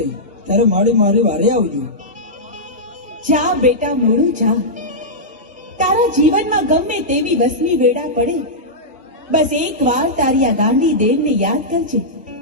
ત્યારે માડી મારી વારે આવજો. જા બેટા મોરું જા. તારા જીવનમાં ગમે તેવી વસમી વેળા પડે, બસ એક વાર તારી આ ગાંડી દેવને યાદ કરજે.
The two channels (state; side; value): normal; both; correlation -0.11